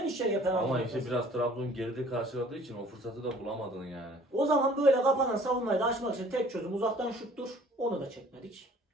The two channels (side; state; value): both; normal; correlation 0.53